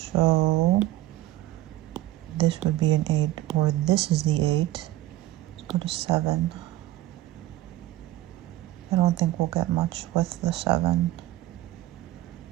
So this would be an 8 or this is the 8. Let's go to 7. I don't think we'll get much with the 7,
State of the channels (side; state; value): left; quieter; 15.4 dB